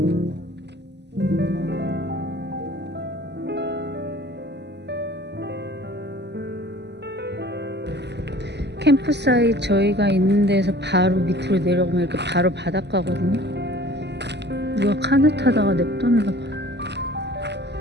캠프사이트 저희가 있는 데서 바로 밑으로 내려가면 이렇게 바로 바닷가거든요. 누가 카누 타다가 냅뒀나 봐.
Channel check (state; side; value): late; left; 0.50 ms